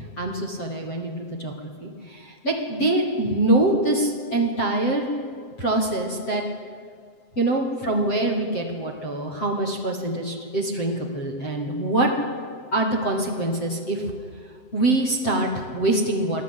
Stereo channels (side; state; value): right; late; 7.7 ms